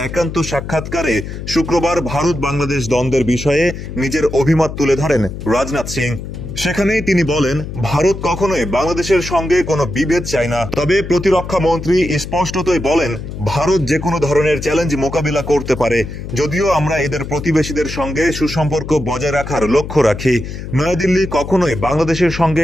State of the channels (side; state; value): left; noise; hum, 9 dB below the sound